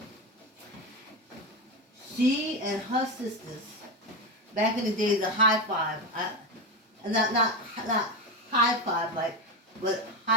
She and her sisters, back in the days of high five, not high five like, but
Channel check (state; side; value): normal; both; correlation 0.15